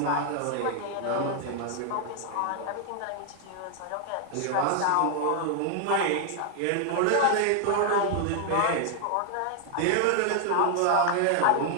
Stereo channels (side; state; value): both; different; correlation 0.00